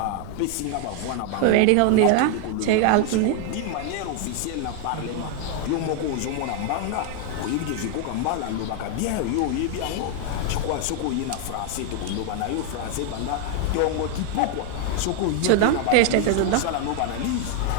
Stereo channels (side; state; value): both; different; correlation 0.00